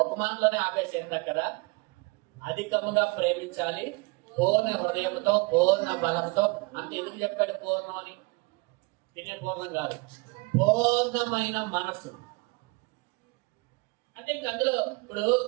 ఒక మాటలోనే ఆపేసేంట కదా, అధికముగా ప్రేమించాలి, పూర్ణ హృదయంతో పూర్ణ బలంతో. అంటే ఎందుకు చెప్పాడు పూర్ణం అని? తినే పూర్ణం కాదు, పూర్ణమైన మనసు. అంటే ఇంక అందులో ఇప్పుడు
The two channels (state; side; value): quieter; left; 27.1 dB